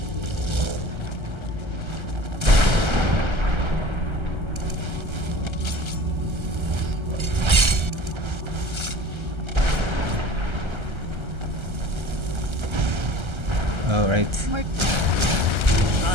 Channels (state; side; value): late; left; 1.3 ms